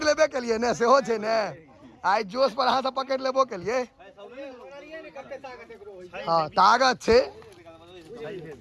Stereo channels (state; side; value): identical; both; correlation 1.00